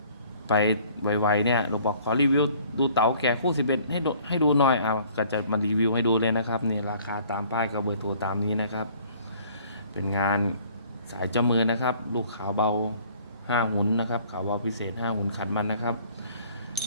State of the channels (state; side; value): inverted; both; correlation -0.55